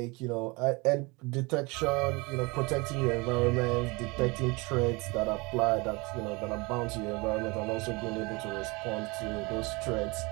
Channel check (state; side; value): quieter; left; 26.2 dB